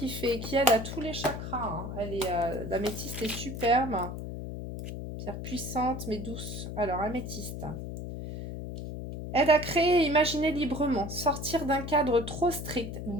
aide à tous les chakras. Hein. L'améthyste est superbe. Pierre puissante mais douce. Alors, améthyste. Aide à créer et imaginer librement, sortir d'un cadre trop strict,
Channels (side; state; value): left; noise; hum, 7 dB below the sound